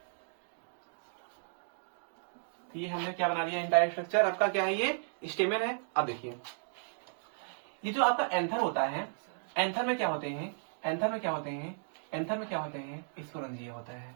ये हमने क्या बना दिया? एंटायर स्ट्रक्चर आपका क्या है? ये स्टेमन है। अब देखिए ये जो आपका एंथर होता है, एंथर में क्या होते हैं? स्पोरेंजिया होता है।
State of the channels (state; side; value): silent; left; digital silence